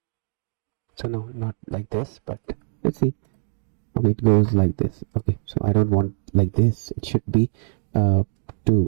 So no, not like this, but let's see. Okay, it goes like this. Okay, so I don't want like this. It should be to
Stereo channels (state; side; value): silent; left; digital silence